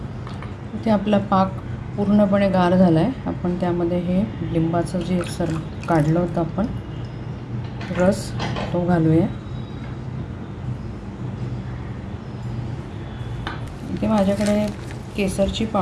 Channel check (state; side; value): identical; both; correlation 1.00